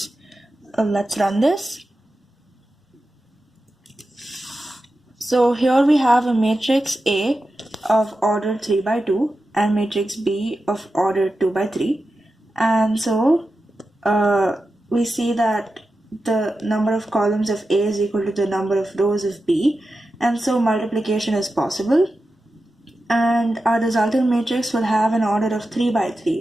Let's run this. So here we have a matrix A of order 3 by 2 and matrix B of order 2 by 3. And so we see that the number of columns of A is equal to the number of rows of B, and so multiplication is possible. And our resultant matrix will have an order of 3 by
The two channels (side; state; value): both; normal; correlation 0.91